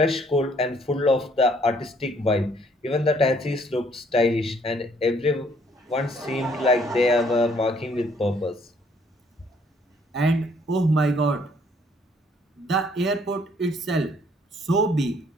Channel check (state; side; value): normal; both; correlation 0.64